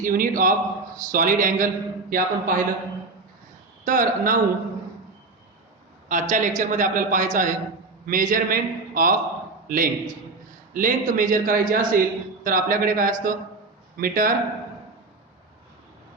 unit of solid angle, हे आपण पाहिलं. तर नाऊ आजच्या लेक्चरमध्ये आपल्याला पाहायचं आहे measurement of length. Length major करायची असेल तर आपल्याकडे काय असतं? मीटर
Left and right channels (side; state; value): left; quieter; 3.6 dB